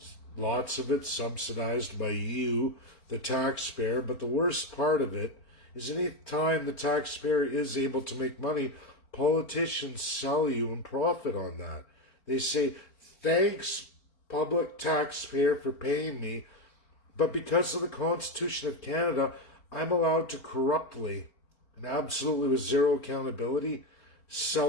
lots of it subsidized by you, the taxpayer, but the worst part of it is any time the taxpayer is able to make money, politicians sell you and profit on that. They say, thanks, public taxpayer, for paying me, but because of the Constitution of Canada, I'm allowed to corruptly and absolutely with zero accountability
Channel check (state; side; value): late; right; 4.4 ms